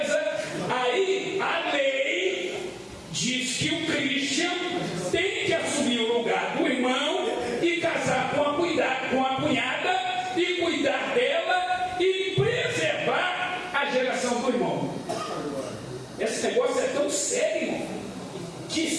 Aí a lei diz que o Christian tem que assumir o lugar do irmão e casar com a cunhada e cuidar dela e preservar a geração do irmão. Esse negócio é tão sério que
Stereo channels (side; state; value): both; identical; correlation 1.00